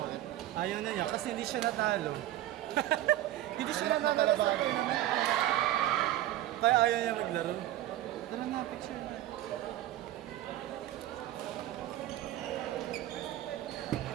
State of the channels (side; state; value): left; quieter; 14.2 dB